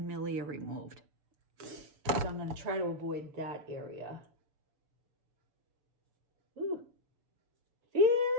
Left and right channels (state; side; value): late; left; 6.9 ms